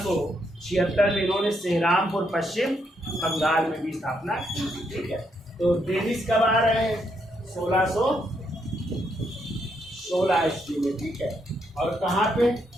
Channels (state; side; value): normal; both; correlation 0.77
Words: में इन्होंने सेहरामपुर पश्चिम बंगाल में भी स्थापना की। ठीक है, तो डेनिश कब आ रहे हैं? 1616 ईस्वी में। ठीक है, और कहाँ पे